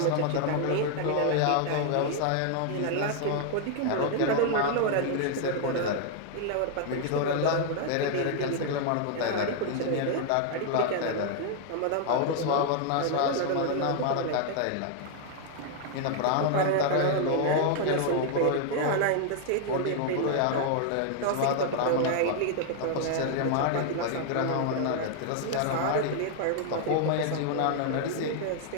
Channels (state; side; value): different; both; correlation 0.00